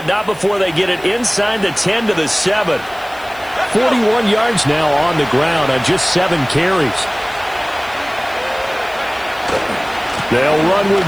not before they get it inside the 10 to the 7. 41 yards now on the ground on just 7 carries. They'll run with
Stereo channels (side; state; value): left; noise; hiss, 23 dB below the sound